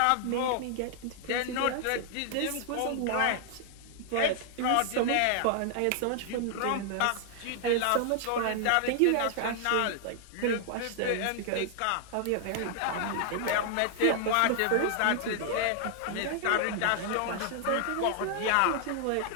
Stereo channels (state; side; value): different; both; correlation 0.00